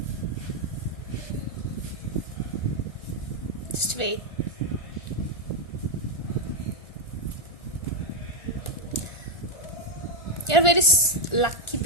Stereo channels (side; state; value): right; late; 1.4 ms